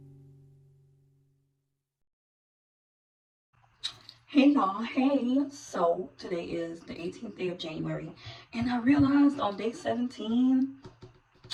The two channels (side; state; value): both; identical; correlation 1.00